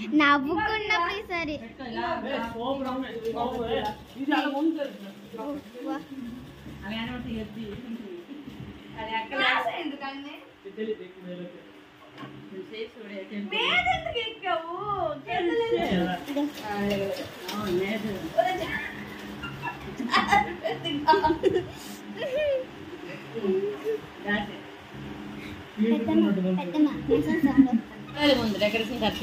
నవ్వుకున్నప్పుడు సరే ఇది అలా ఉంటుంది అది అక్కడ ఎందుకని మీద ఎందుకు ఎక్కావు? ముందు డెకరేషన్ కట్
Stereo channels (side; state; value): both; identical; correlation 1.00